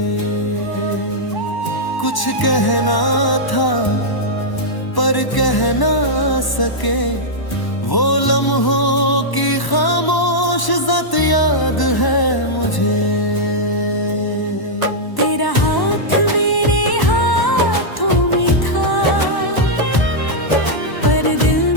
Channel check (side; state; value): right; late; 1.0 ms